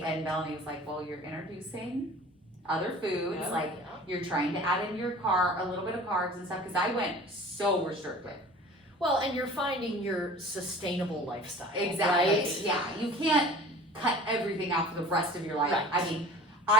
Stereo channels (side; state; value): both; normal; correlation 0.43